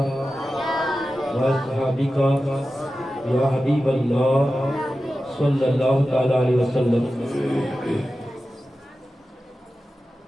وأصحابك يا حبيب الله صلى الله تعالى عليه وسلم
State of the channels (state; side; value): normal; both; correlation 0.93